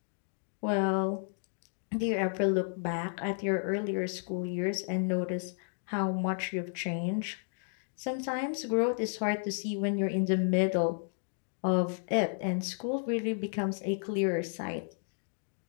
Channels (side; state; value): right; silent; digital silence